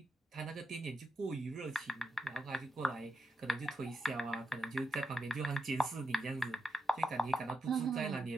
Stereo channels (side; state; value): both; normal; correlation 0.85